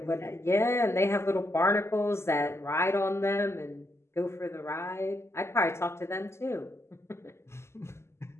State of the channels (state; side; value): late; right; 0.13 ms